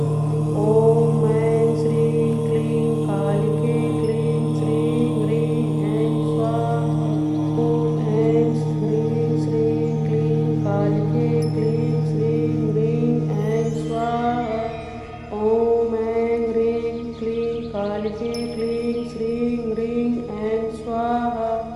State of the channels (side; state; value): both; identical; correlation 1.00